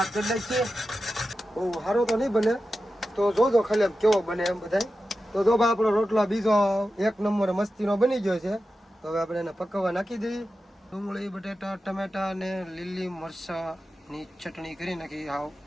કરી નાખીએ. બહુ સારો તો નહીં બને, તો જોજો ખાલી કેવો બને એમ બધાય. તો જો ભાઈ આપણો રોટલા બીજો એક નંબર મસ્તીનો બની ગયો છે. તો હવે આપણે એને પકવવા નાખી દઈએ. ડુંગળી, બટેટા, ટમેટા અને લીલી મરચાની ચટણી કરી નાખી. હાવ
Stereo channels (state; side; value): normal; both; correlation 0.92